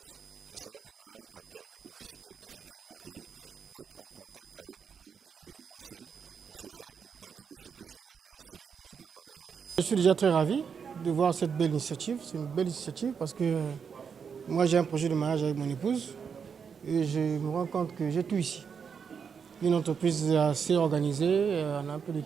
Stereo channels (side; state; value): left; quieter; 6.5 dB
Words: ce salon de mariage a permis aux visiteurs et futurs mariés d'être en contact avec le monde de l'événementiel pour se faire une idée de ce que sera leur cérémonie de mariage. Je suis déjà très ravi de voir cette belle initiative. C'est une belle initiative parce que moi j'ai un projet de mariage avec mon épouse et je me rends compte que j'ai tout ici. Une entreprise assez organisée, on a un peu de